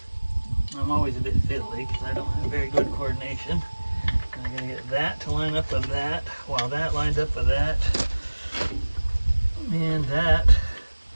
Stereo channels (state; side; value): inverted; both; correlation -1.00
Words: I'm always a bit fiddly because I don't have very good coordination. And I'm gonna get that to line up with that, while that lines up with that. And that